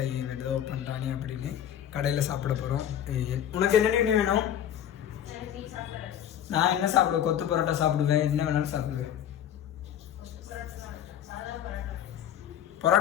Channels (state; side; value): quieter; right; 10.2 dB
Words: ஏதோ பண்ணுறானே அப்படின்னு. கடையில் சாப்பிட போகிறோம். உனக்கு என்ன வேணும்? நான் என்ன சாப்பிடுவேன்? கொத்து பரோட்டா சாப்பிடுவேன். என்ன வேணாலும் சாப்பிடுவேன்.